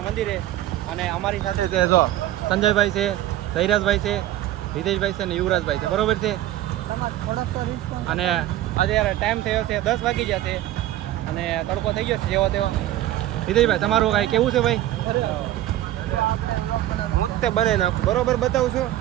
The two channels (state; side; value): quieter; left; 13.9 dB